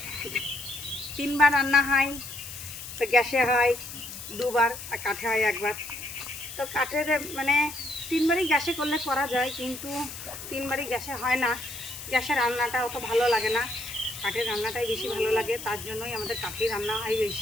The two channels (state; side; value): noise; left; hiss, 11 dB below the sound